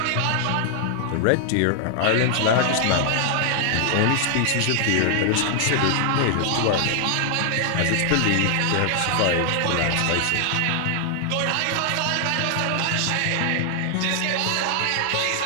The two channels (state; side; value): different; both; correlation 0.00